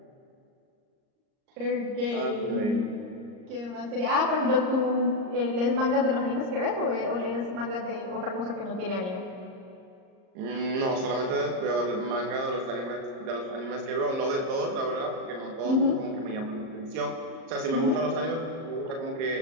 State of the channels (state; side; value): late; left; 38 ms